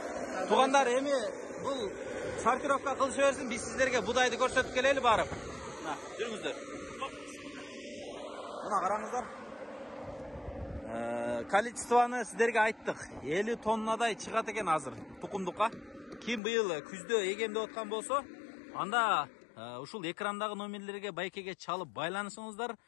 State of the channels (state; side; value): drops out; right; at 16.4 s